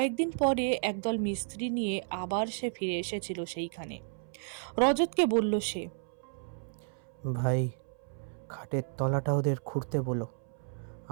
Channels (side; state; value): left; silent; 56 dB below the other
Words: পরে একদল মিস্ত্রি নিয়ে আবার সে ফিরে এসেছিল সেইখানে। রজতকে বলল সে, ভাই, খাটের তলাটা ওদের খুঁড়তে বলো।